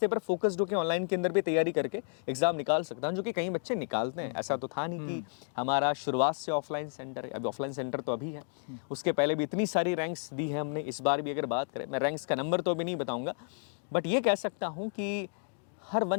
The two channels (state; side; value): silent; right; digital silence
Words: पर फोकस्ड होकर ऑनलाइन के अंदर भी तैयारी करके एग्जाम निकाल सकता हूँ, जो कि कई बच्चे निकालते हैं। ऐसा तो था नहीं कि हमारा शुरुआत से ऑफलाइन सेंटर है, अभी ऑफलाइन सेंटर तो अभी है, उसके पहले भी इतनी सारी रैंक्स दी है हमने। इस बार भी अगर बात करें, मैं रैंक्स का नंबर तो अभी नहीं बताऊंगा, बट ये कह सकता हूँ कि हर